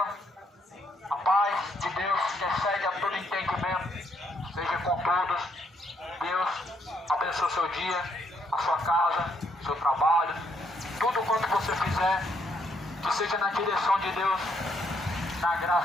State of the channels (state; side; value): normal; both; correlation 0.73